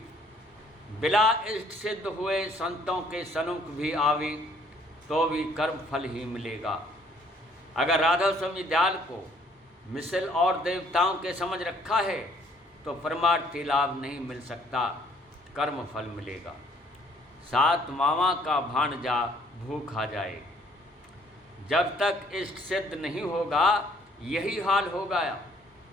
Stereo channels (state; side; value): normal; both; correlation 0.62